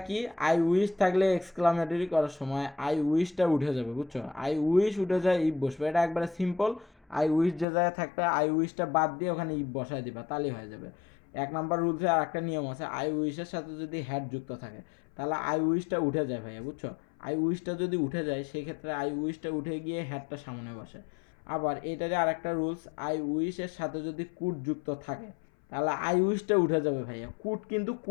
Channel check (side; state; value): right; drops out; at 7.7 s